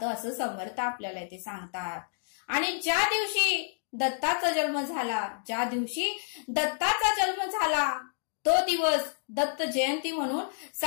असं समर्थ आपल्याला इथे सांगतात. आणि ज्या दिवशी दत्ताचा जन्म झाला तो दिवस दत्त जयंती म्हणून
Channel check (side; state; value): right; silent; digital silence